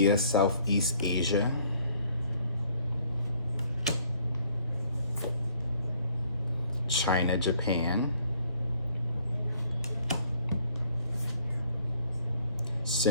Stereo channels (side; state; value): both; inverted; correlation -0.62